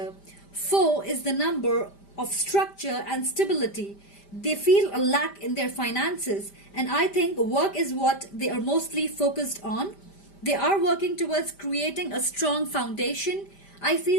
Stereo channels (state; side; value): late; right; 5.0 ms